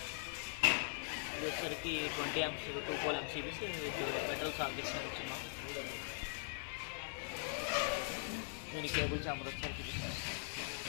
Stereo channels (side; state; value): right; silent; 50 dB below the other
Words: ఇది వచ్చరికి 20 amps 2 pole MPCBs with metal sockets ఇచ్చున్నాం. దీని కేబుల్ ఛాంబర్ వచ్చరికి